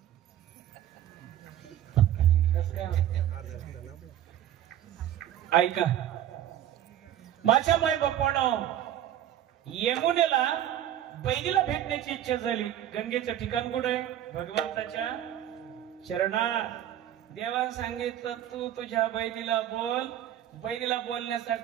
ऐका माझ्या माय बापानं यमुनेला बहिणीला भेटण्याची इच्छा झाली. गंगेचं ठिकाण कुठं आहे? भगवंताच्या चरणात. देवाने सांगितलं तू तुझ्या बहिणीला बोल. बहिणीला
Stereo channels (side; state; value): left; quieter; 11.5 dB